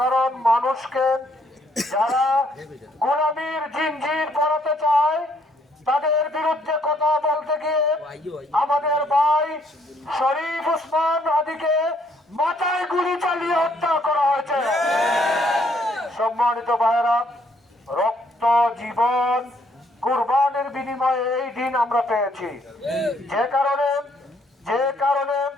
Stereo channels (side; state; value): both; normal; correlation 0.68